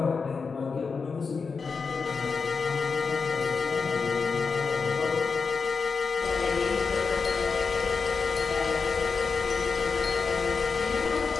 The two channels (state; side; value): quieter; right; 5.0 dB